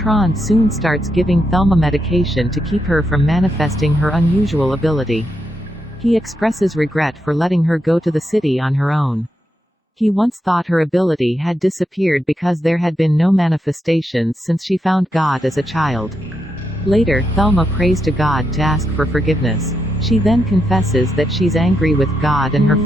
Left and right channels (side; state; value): both; normal; correlation 0.83